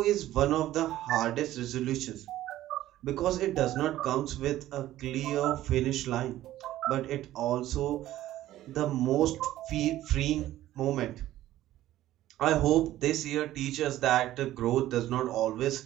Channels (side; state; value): left; quieter; 14.2 dB